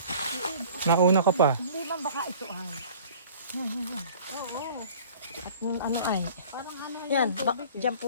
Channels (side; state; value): both; inverted; correlation -0.48